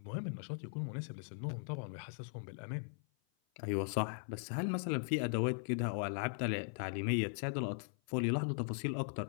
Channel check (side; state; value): right; silent; 52 dB below the other